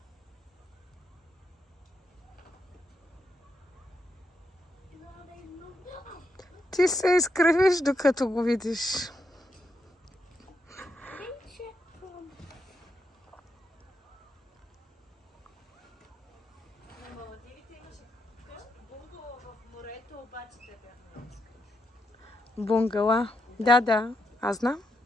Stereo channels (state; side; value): normal; both; correlation 0.82